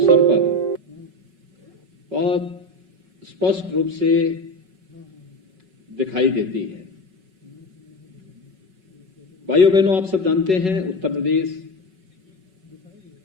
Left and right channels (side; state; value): left; late; 5.4 ms